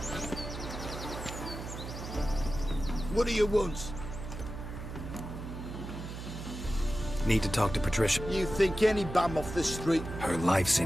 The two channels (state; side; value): noise; right; hum, 9 dB below the sound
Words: What do you want? Need to talk to Patricia. You think any bum off the street... Her life's